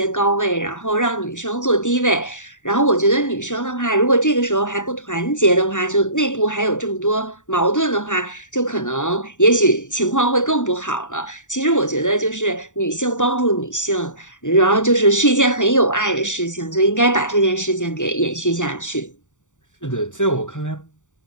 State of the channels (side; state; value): right; late; 0.86 ms